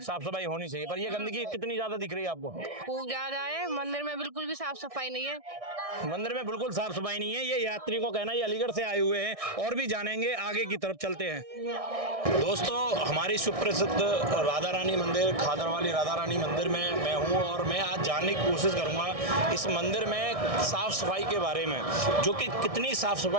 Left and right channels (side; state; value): left; late; 1.6 ms